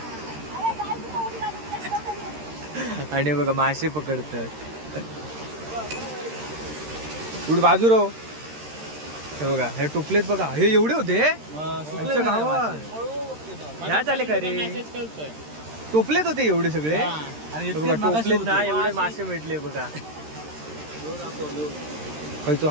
आणि बघा मासे पकडतात. कुठे बाजू राहो. हे बघा हे टोपलेत बघा, हे एवढे होते गावात. ह्या चाले का रे, टोपलेत होते एवढे सगळे. बघा टोपलेत ना एवढे मासे भेटले बघा. खायचो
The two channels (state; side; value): late; left; 13 ms